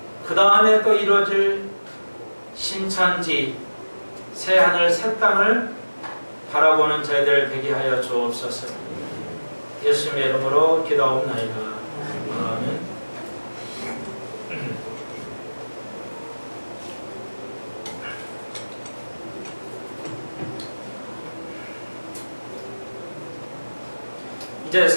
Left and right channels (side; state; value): both; inverted; correlation -1.00